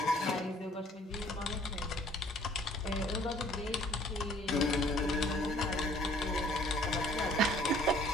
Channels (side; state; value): both; normal; correlation 0.57